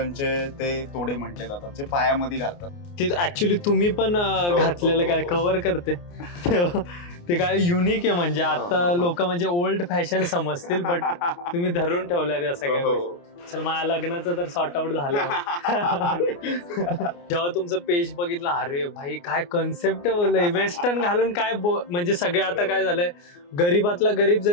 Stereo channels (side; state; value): right; late; 29 ms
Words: ते तोडे म्हटले जातात, जे पायामध्ये घालतात. ते ऍक्च्युली तुम्ही पण घातलेलं काय कव्हर करते ते काय युनिक आहे. म्हणजे आता लोक म्हणजे ओल्ड फॅशन समजतील, बट तुम्ही धरून ठेवल्या त्या सगळ्या गोष्टी. चल, माझ्या लग्नाचं तर सॉर्ट आउट झालं. जेव्हा तुमचं पेज बघितलं, अरे भाई काय कन्सेप्ट बोललंय, वेस्टर्न घालून काय म्हणजे सगळे आता काय झालंय, गरीबातला गरीब